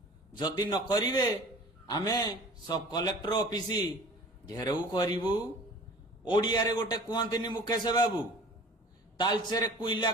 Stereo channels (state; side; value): normal; both; correlation 0.44